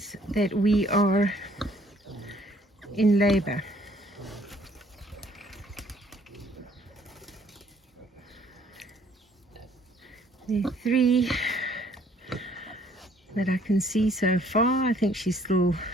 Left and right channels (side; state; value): both; normal; correlation 0.62